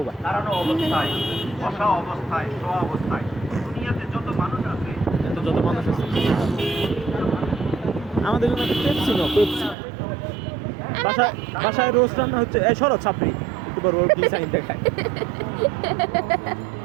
গা। এত যত মানুষ আছে আমাদের জন্য একটা পেপসি নাও, পেপসি। বাসায় বাসায় রোস্ট রান্না হচ্ছে। এই সরো ছাপড়ি একটু বড় বড় প্লিজ আইন দেখায়।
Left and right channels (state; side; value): drops out; left; at 9.8 s